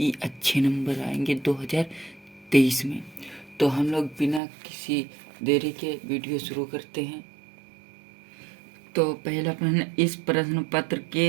अच्छे नंबर आएंगे 2023 में। तो हम लोग बिना किसी देरी के वीडियो शुरू करते हैं। तो पहला प्रश्न, इस प्रश्न पत्र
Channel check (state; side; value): drops out; left; at 4.4 s